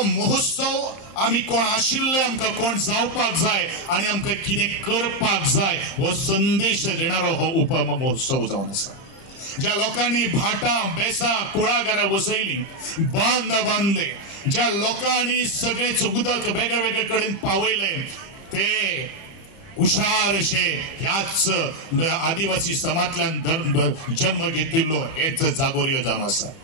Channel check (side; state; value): right; late; 29 ms